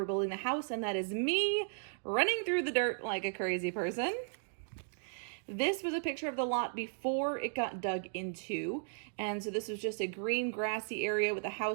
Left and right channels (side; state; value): left; silent; digital silence